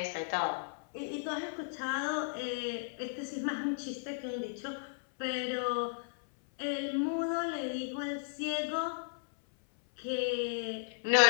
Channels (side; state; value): right; silent; 55 dB below the other